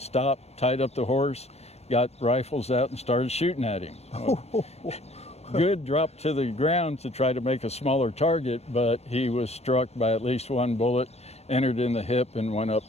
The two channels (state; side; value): late; right; 0.31 ms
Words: tied up the horse, got rifles out and started shooting at him. Good dropped to the ground to try to make a smaller target, but he was struck by at least one bullet, entered in the hip and went up